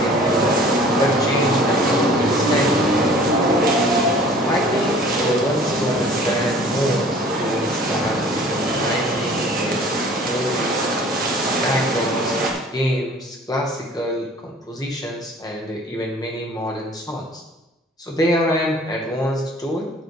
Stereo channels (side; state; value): both; normal; correlation 0.49